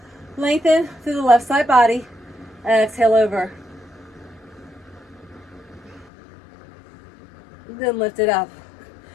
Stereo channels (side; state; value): right; drops out; at 6.1 s